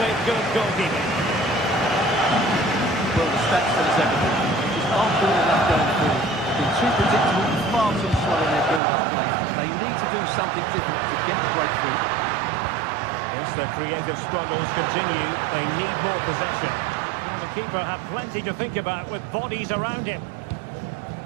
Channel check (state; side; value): drops out; left; at 8.8 s